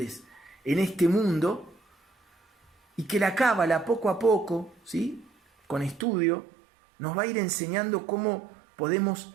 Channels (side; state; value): left; drops out; at 6.1 s